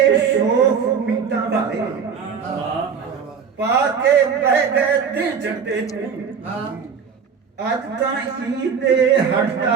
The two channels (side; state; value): left; quieter; 6.6 dB